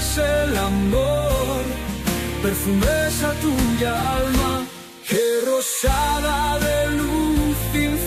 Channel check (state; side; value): identical; both; correlation 1.00